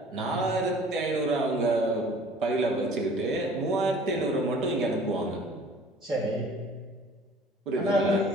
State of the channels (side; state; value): both; normal; correlation 0.50